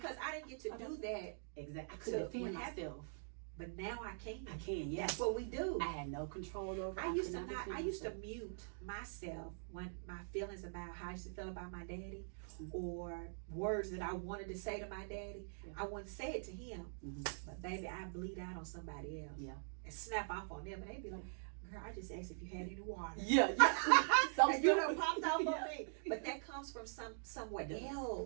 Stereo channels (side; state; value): left; silent; digital silence